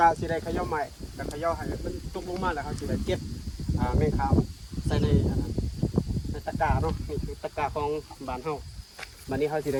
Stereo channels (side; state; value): both; identical; correlation 1.00